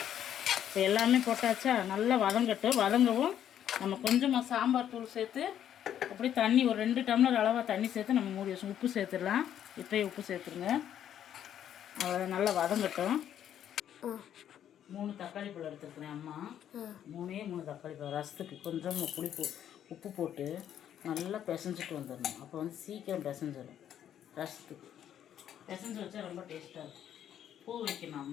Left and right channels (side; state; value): right; quieter; 10.2 dB